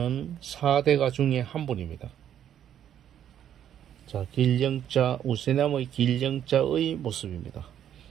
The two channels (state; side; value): quieter; left; 10.1 dB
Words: 4대가 중에 한 분입니다. 자, 길영자, 우세남의 길영자의 모습입니다.